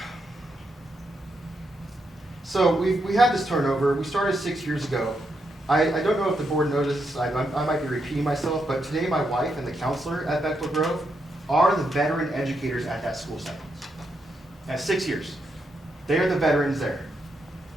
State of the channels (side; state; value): both; normal; correlation 0.81